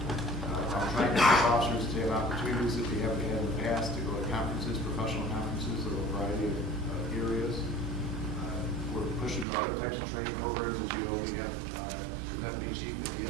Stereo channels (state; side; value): drops out; left; at 9.5 s